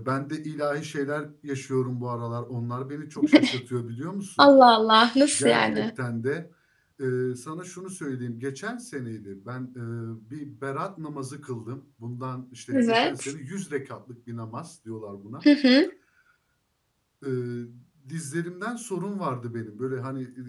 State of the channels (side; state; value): both; identical; correlation 1.00